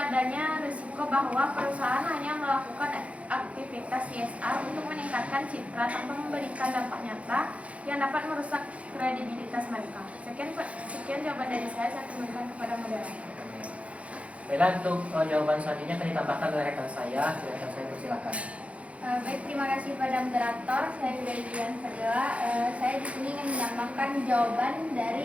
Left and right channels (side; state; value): left; late; 0.064 ms